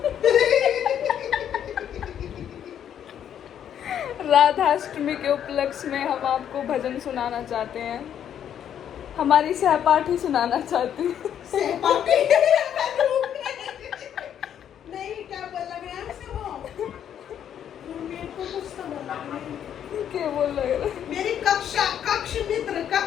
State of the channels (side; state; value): right; quieter; 9.5 dB